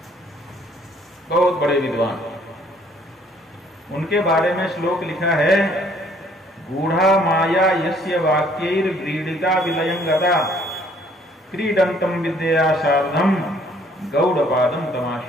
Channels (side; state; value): both; normal; correlation 0.61